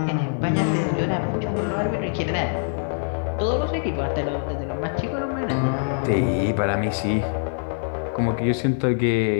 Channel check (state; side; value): silent; right; 63 dB below the other